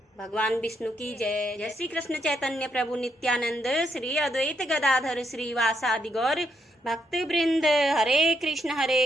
भगवान विष्णु की जय जय श्री कृष्ण चैतन्य प्रभु नित्यानंद श्री अद्वैत गदाधर श्रीवासादि गौर भक्त वृंद हरे कृष्ण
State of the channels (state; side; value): normal; both; correlation 0.77